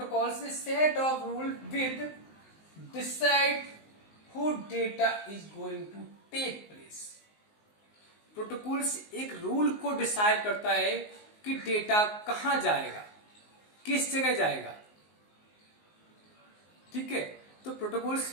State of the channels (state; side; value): late; right; 19 ms